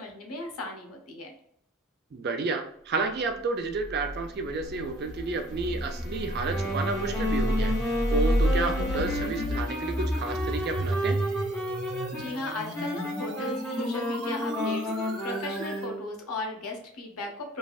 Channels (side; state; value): both; normal; correlation 0.57